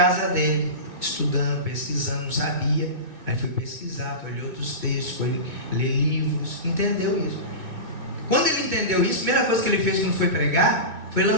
dele, estudando, pesquisando, não sabia, aí foi pesquisar, foi ler outros textos, foi ler livros, entendeu isso. Quando ele entendeu isso, a primeira coisa que ele fez quando foi pregar foi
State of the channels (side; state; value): left; late; 2.0 ms